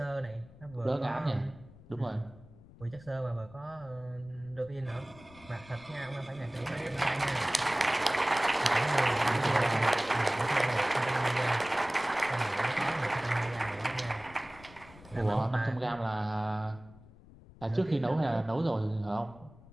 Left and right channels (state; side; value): noise; left; rumble, 21 dB below the sound